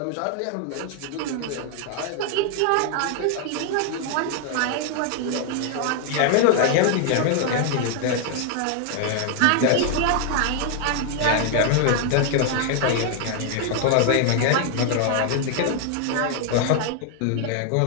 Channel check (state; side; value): different; both; correlation 0.00